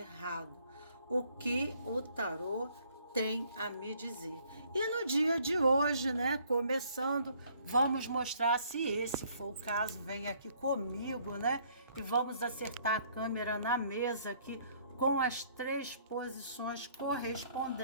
O que o tarô tem a me dizer? E no dia de hoje, né, começando, vamos mostrar, se esse for o caso, vem aqui comigo, né, e vamos acertar a câmera na mesa aqui com as 3 posições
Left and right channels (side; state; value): both; inverted; correlation -0.63